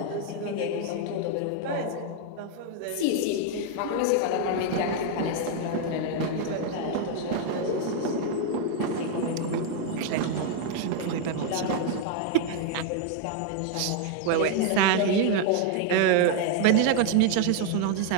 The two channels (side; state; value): both; different; correlation 0.00